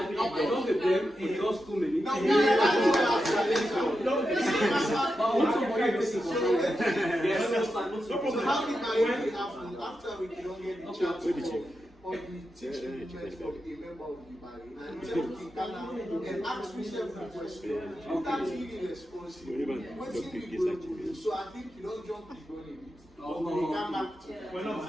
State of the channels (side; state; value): both; normal; correlation 0.89